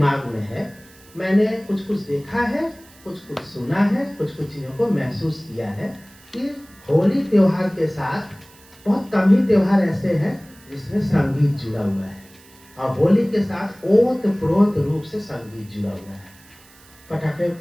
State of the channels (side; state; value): right; noise; hiss, 25 dB below the sound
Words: में है, मैंने कुछ कुछ देखा है, कुछ कुछ सुना है, कुछ कुछ चीज़ों को महसूस किया है कि होली त्योहार के साथ बहुत कम ही त्योहार ऐसे हैं जिसमें संगीत जुड़ा हुआ है, और होली के साथ ओतप्रोत रूप से संगीत जुड़ा हुआ है। पटाखे